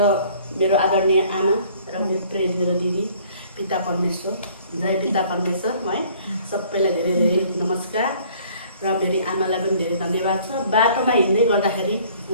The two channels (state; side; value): inverted; both; correlation -0.56